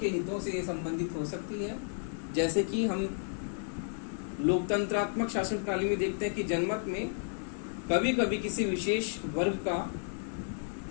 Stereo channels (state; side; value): silent; right; 56 dB below the other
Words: के हितों से ये संबंधित हो सकती है। जैसे कि हम लोकतंत्रात्मक शासन प्रणाली में देखते हैं कि जनमत में कभी कभी किसी विशेष वर्ग का